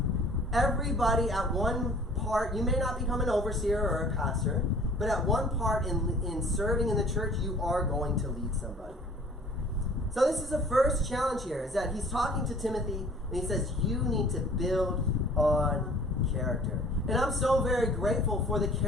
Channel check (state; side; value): normal; both; correlation 0.51